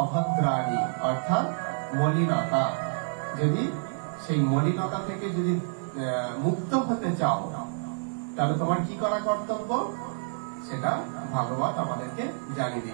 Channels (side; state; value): left; silent; 58 dB below the other